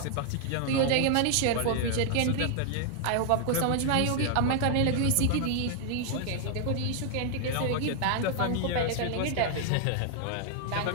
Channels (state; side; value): different; both; correlation 0.00